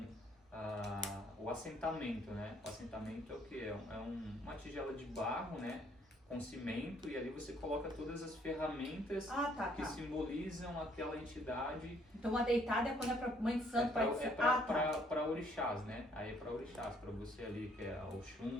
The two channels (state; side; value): normal; both; correlation 0.65